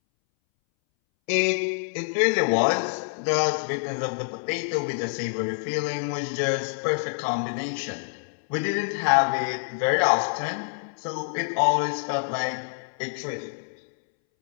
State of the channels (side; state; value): right; silent; 61 dB below the other